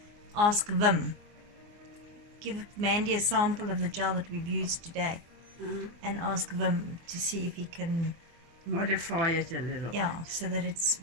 ask Vim. Give Mandy a sample of the gel that we've used today and ask Vim to see if he can, Modify it a little. yeah, so that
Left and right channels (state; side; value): late; left; 24 ms